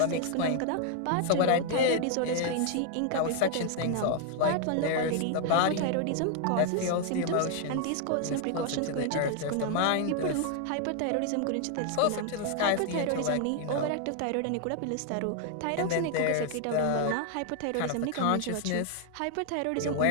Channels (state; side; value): different; both; correlation 0.00